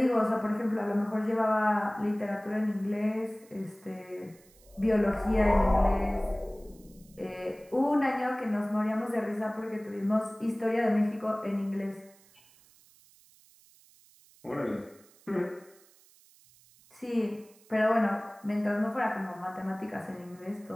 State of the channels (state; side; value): noise; right; hiss, 28 dB below the sound